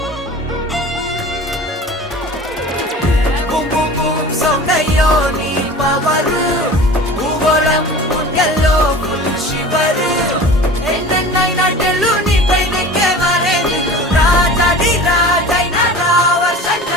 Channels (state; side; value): normal; both; correlation 0.39